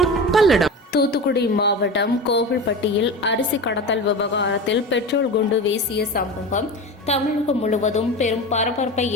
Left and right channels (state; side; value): normal; both; correlation 0.28